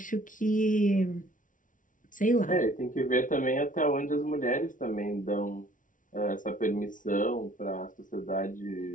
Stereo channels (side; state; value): right; late; 0.38 ms